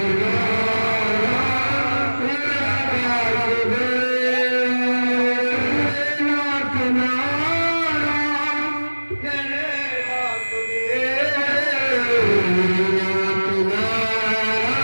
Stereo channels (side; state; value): both; inverted; correlation -1.00